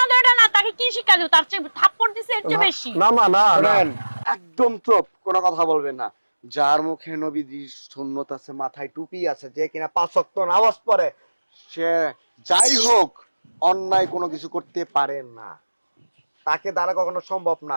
দেয়টা না, তাকে কি শিক্ষা দিও? তার চেয়ে থাপ্পড় দিছে এর চেয়ে বেশি। না মা, না না। শুনেন, একদম চুপ, কোনো কথা বলবেন না। যার মুখে নবীজির সুন্নত আছে, মাথায় টুপি আছে, যে কিনা 5 ওয়াক্ত নামাজ পড়ে, সে যাই হোক অন্যায় কোনো কিছু করতে পারে না, তাকে দ্বারা কখনো সম্ভব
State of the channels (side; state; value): both; inverted; correlation -1.00